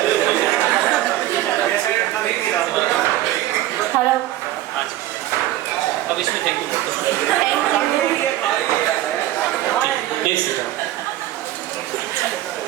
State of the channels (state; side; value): quieter; left; 14.6 dB